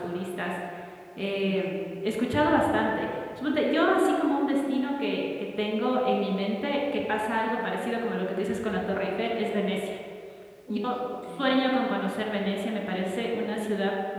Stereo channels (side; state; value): both; identical; correlation 1.00